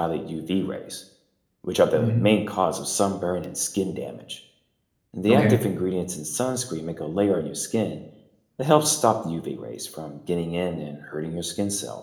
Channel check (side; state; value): both; identical; correlation 1.00